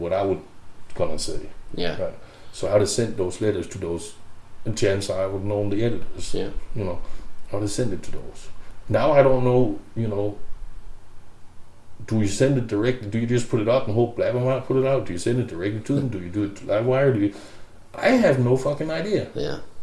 I would gonna say. Yeah. Right? So I'd have sent those letters to those, and chances are I would have known the editors. Yeah. I would have sent it to those. Now I don't know, do you send it directly? Do you just put it up and hope Blabbermouth put it out? Do you send it directly to them? Do you do it to Livewire? I have no fucking idea. Yeah.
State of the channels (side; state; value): both; identical; correlation 1.00